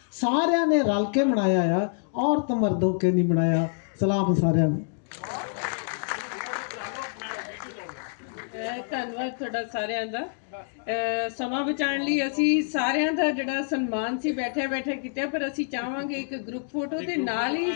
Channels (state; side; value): silent; right; digital silence